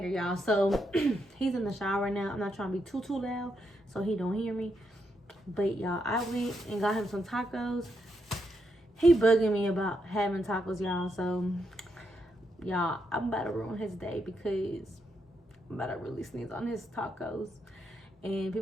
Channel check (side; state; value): both; normal; correlation 0.81